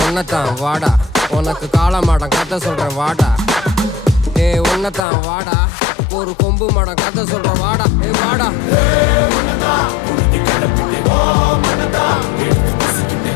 உன்னதான் வாடா, உனக்கு காளமாடம் கதை சொல்றேன் வாடா. ஏய் உன்னதான் வாடா, ஒரு கொம்பு மாடம் கதை சொல்றேன் வாடா. ஏய் வாடா.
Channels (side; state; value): right; drops out; at 5.1 s